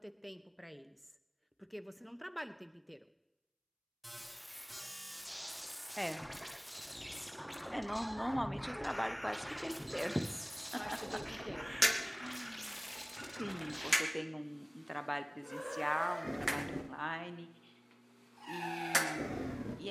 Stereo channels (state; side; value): identical; both; correlation 1.00